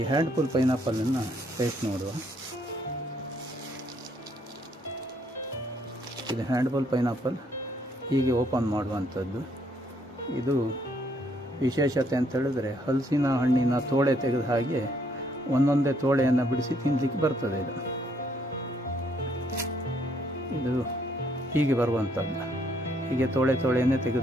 ಹ್ಯಾಂಡ್ಫುಲ್ ಪೈನಾಪಲನ್ನು ಟೇಸ್ಟ್ ನೋಡುವ. ಇದು ಹ್ಯಾಂಡ್ಫುಲ್ ಪೈನಾಪಲ್ ಹೀಗೆ ಓಪನ್ ಮಾಡುವಂಥದ್ದು. ಇದು ವಿಶೇಷತೆ ಅಂತ ಹೇಳಿದ್ರೆ ಹಲಸಿನ ಹಣ್ಣಿನ ತೋಳೆ ತೆಗೆದ ಹಾಗೆ ಒಂದೊಂದೇ ತೋಳೆಯನ್ನು ಬಿಡಿಸಿ ತಿನ್ನಲಿಕ್ಕೆ ಬರ್ತದೆ. ಇದು ಹೀಗೆ ಬರುವಂಥದ್ದು, ಹೀಗೆ ತೋಳೆಯನ್ನೇ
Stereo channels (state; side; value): normal; both; correlation 0.69